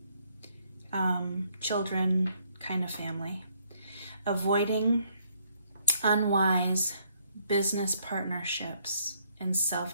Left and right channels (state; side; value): inverted; both; correlation -0.70